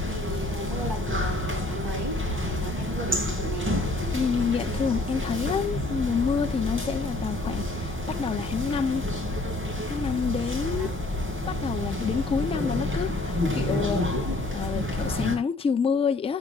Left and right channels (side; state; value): right; quieter; 3.0 dB